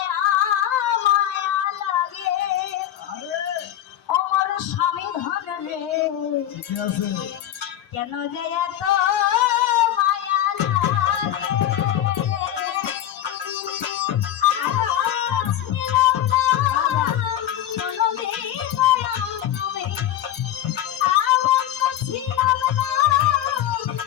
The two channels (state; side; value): quieter; right; 11.9 dB